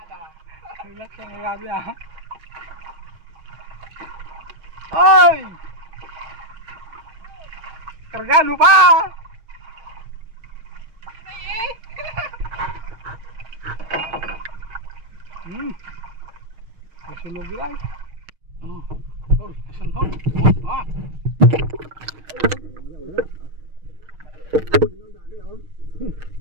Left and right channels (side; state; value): left; late; 6.4 ms